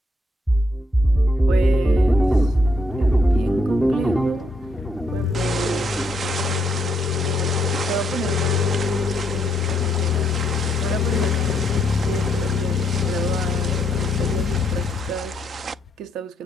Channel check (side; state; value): both; normal; correlation 0.75